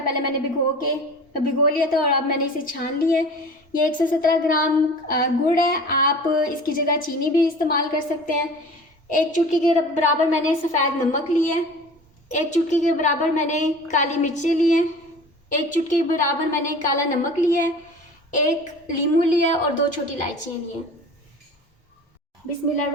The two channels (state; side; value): normal; both; correlation 0.40